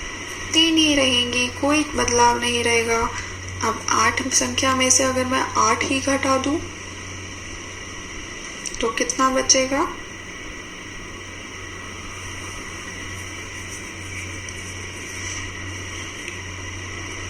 3 ही रहेंगी, कोई बदलाव नहीं रहेगा। अब 8 संख्या में से अगर मैं 8 ही घटा दूं तो कितना बचेगा?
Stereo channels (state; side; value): identical; both; correlation 1.00